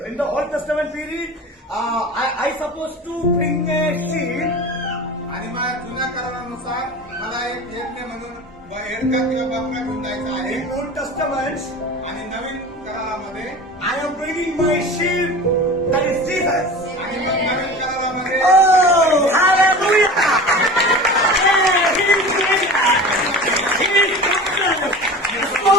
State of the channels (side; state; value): both; normal; correlation 0.35